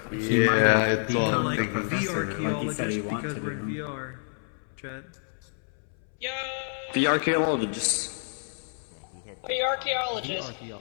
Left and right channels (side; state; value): right; silent; 59 dB below the other